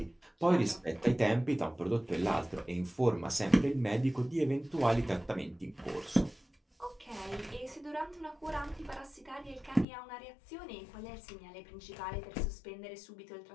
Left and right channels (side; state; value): right; drops out; at 9.9 s